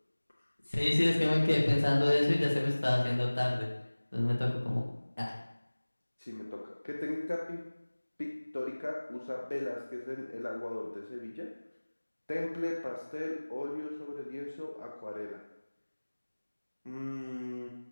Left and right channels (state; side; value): inverted; both; correlation -1.00